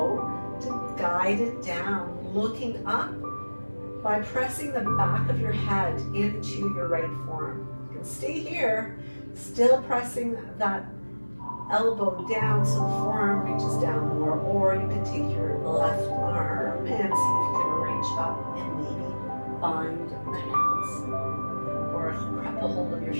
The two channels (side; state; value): both; inverted; correlation -1.00